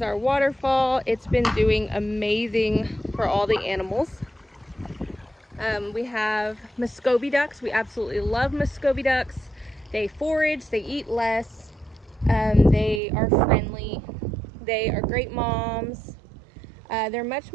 our waterfall. It's been doing amazing for all the animals. We have Muscovy ducks. We absolutely love Muscovy ducks. They forage, they eat less. They are friendly. They are great moms. They're much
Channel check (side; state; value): left; drops out; at 13.0 s